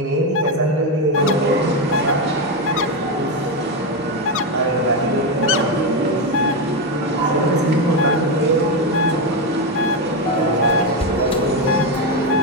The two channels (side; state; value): both; normal; correlation 0.09